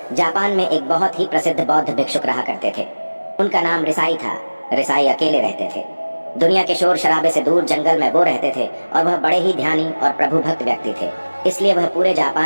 जापान में एक बहुत ही प्रसिद्ध बौद्ध भिक्षुक रहा करते थे। उनका नाम रिसाई था। रिसाई अकेले रहते थे। दुनिया के शोर शराबे से दूर जंगल में वो रहते थे और वह बड़े ही ध्यानी और प्रभु भक्त व्यक्ति थे, इसलिए वह पूरे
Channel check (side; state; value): both; inverted; correlation -1.00